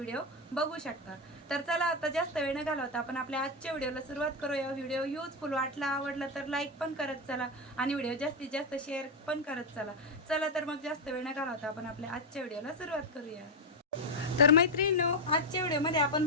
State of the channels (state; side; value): normal; both; correlation 0.06